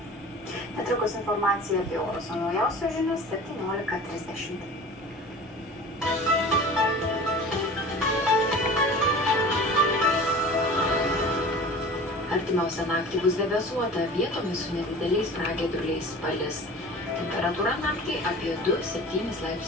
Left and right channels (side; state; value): both; normal; correlation 0.39